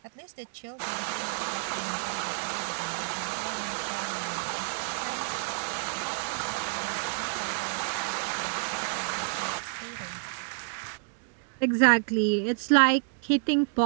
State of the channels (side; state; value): left; silent; digital silence